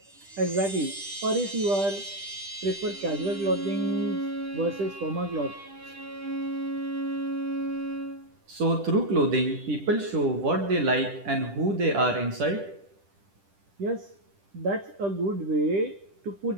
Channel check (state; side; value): late; left; 10 ms